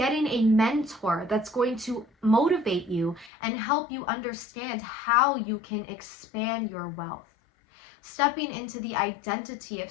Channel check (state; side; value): drops out; right; at 3.3 s